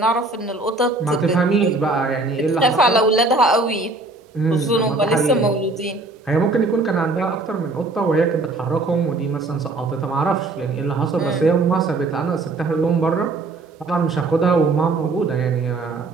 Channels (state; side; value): quieter; left; 3.3 dB